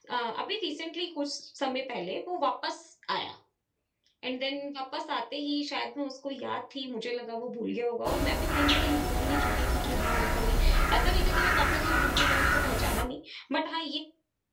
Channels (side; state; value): both; identical; correlation 1.00